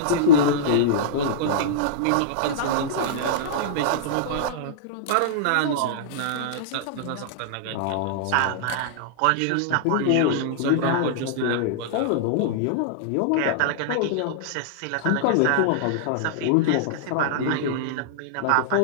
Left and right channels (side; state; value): both; different; correlation -0.02